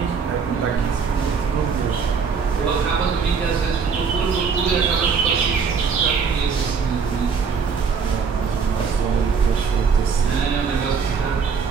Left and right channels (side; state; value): left; quieter; 5.8 dB